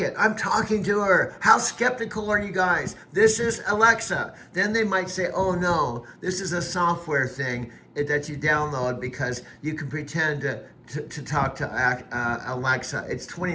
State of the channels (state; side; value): identical; both; correlation 1.00